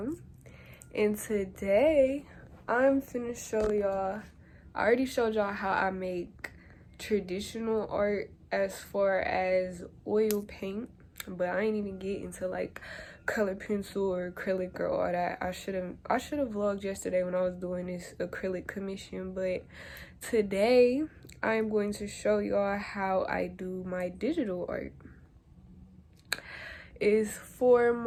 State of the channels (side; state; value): both; identical; correlation 1.00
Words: and today I'm finna show y'all. I already showed y'all how I make traditional art as far as oil paint, but I ain't even get into like color pencil or acrylic or all that. I should have vlogged yesterday when I was doing this acrylic commission, but today I'm going to show y'all how I do my digital art. Is for